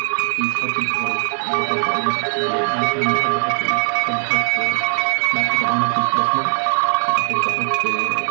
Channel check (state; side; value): silent; left; digital silence